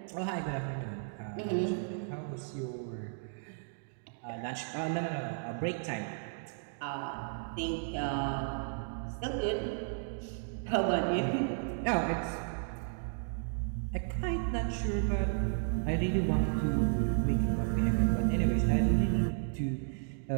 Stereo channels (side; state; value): left; silent; digital silence